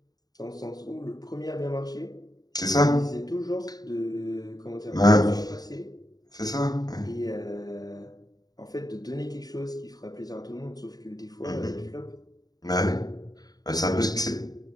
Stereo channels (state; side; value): late; right; 0.19 ms